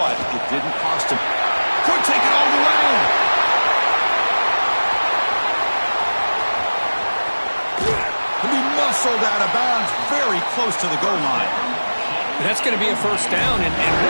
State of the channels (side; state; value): both; inverted; correlation -1.00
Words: it didn't cost him. Could take it all the way. He'll be muscled out of bounds very close to the goal line. That's going to be a first down, and